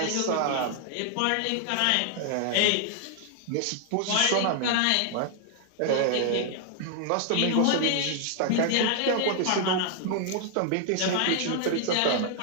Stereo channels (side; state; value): both; different; correlation 0.00